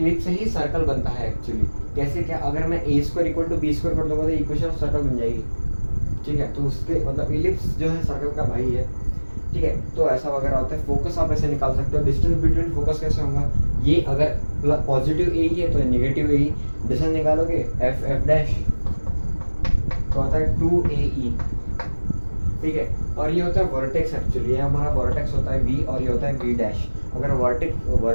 से ही सर्कल बनता है एक्चुअली। कैसे क्या? अगर मैं A² = B² कर दूंगा तो इक्वेशन ऑफ सर्कल बन जाएगी। ठीक है, तो उसके मतलब एलिप्स जो है सर्कल का भाई है। ठीक है, तो ऐसा वगैरह होता है। फोकस आप ऐसे निकाल सकते हो। डिस्टेंस बिटवीन फोकस कैसे होगा? ये अगर पॉजिटिव A ही है तो नेगेटिव A ही। डिस्टेंस निकालोगे F डैश तो आता है 2AE। ठीक है, और ये होता है वर्टेक्स। एक्चुअली ये हमारा वर्टेक्स होता है V और ये होता है V डैश। अगर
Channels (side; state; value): both; inverted; correlation -1.00